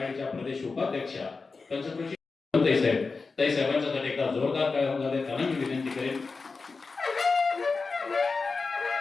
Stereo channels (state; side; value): quieter; right; 4.3 dB